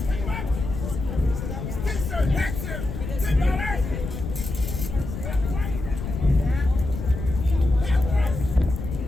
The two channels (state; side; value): noise; left; rumble, 6 dB below the sound